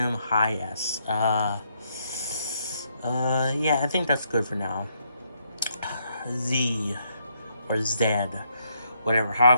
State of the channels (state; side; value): inverted; both; correlation -0.74